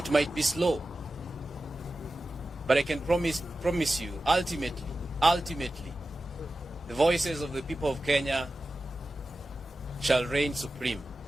might be slow, but I can promise you, ultimately, the voices of the people of Kenya shall reign supreme.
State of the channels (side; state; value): both; normal; correlation 0.94